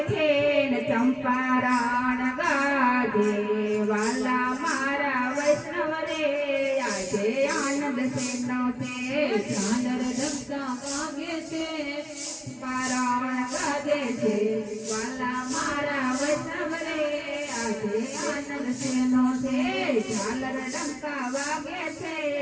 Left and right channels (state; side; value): identical; both; correlation 1.00